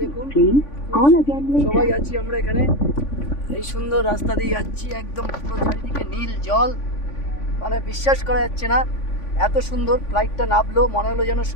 দেখুন সবাই আছি আমরা এখানে। এই সুন্দর রাস্তা দিয়ে যাচ্ছি, একদম পুরো চারিদিকে নীল জল, মানে বিশ্বাস করা যাচ্ছে না এত সুন্দর। ফ্লাইটটা নামলো মনে হলো যেন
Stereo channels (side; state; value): right; late; 3.5 ms